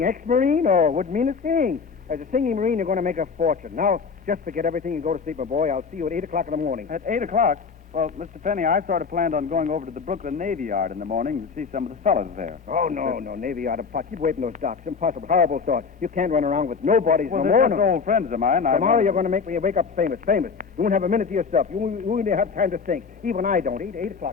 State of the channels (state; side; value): quieter; right; 5.4 dB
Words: ex-Marine? Oh, wouldn't mean a thing. As a singing Marine, you're going to make a fortune. Now, just forget everything and go to sleep, my boy. I'll see you at 8 o'clock in the morning. At 8 o'clock? Well, Mr. Penny, I sort of planned on going over to the Brooklyn Navy Yard in the morning to see some of the fellas there. Oh, no, Navy Yard of pot. Keep away from those docks. Impossible. Horrible thought. You can't run around with nobodies Well, no they're more. just old friends of mine. Tomorrow you're going to make me wake up famous. You won't have a minute to yourself. You won't even have time to think. Even I don't. 8